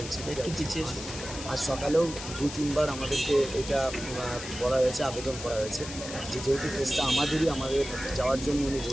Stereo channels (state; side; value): noise; left; hiss, 10 dB below the sound